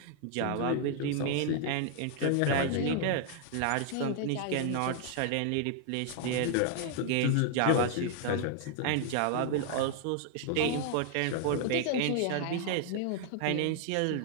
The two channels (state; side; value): different; both; correlation 0.00